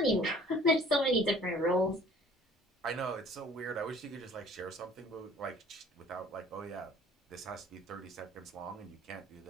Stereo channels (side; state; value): both; normal; correlation 0.52